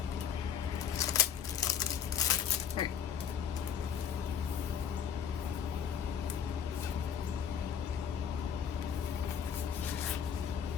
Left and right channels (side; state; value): right; quieter; 8.0 dB